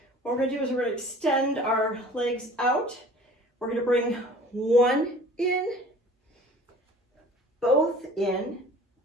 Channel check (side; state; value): both; normal; correlation 0.47